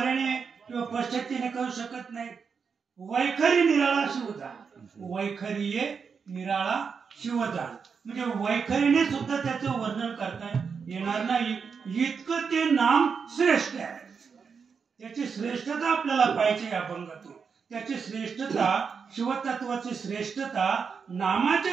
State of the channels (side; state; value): left; quieter; 5.9 dB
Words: किंवा पश्चंतीने करू शकत नाही. वैखरी निराळा शिवजान. वैखरी निराळा शिवजान म्हणजे वैखरीने सुद्धा त्याचं वर्णन करता येणार नाही. इतकं ते नाम श्रेष्ठ आहे. त्याची श्रेष्ठता आपल्याला पाहिजे अभंगातून. त्याची श्रेष्ठता, शिवतत्वाची श्रेष्ठता नामाच्या